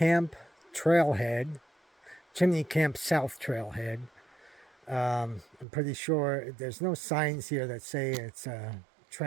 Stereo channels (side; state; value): left; drops out; at 5.7 s